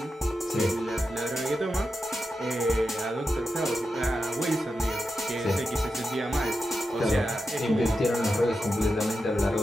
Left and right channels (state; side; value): normal; both; correlation 0.89